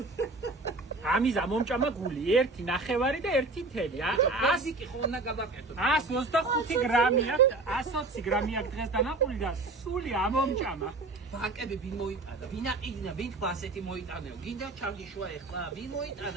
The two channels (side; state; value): left; quieter; 3.3 dB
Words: ამიზა მომჭამა გული, 1.5 და 1.1. აზიკი ხო უნდა გავაკეთო. 125 გრამია, 120 გრამია დღეს დანაყული და სული ამომჭამა. ბანკები ვინ მოიტანა? ვინ აყინა? ვინ თქვა ასეთი მოიტანეო? გინდა ჩავდიშვა ეხლა? ვინ